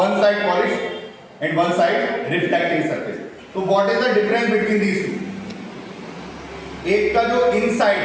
side polish and one side reflecting surface. तो what is the difference between these two? एक का जो इनसाइड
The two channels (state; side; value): identical; both; correlation 1.00